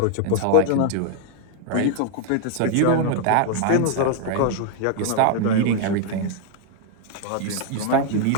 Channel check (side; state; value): both; different; correlation 0.00